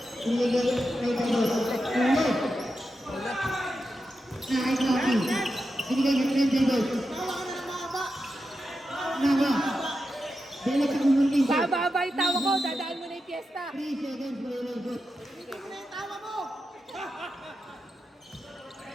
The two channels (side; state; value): both; normal; correlation 0.89